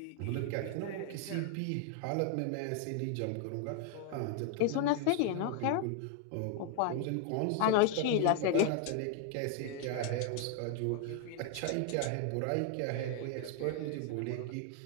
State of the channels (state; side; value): different; both; correlation 0.00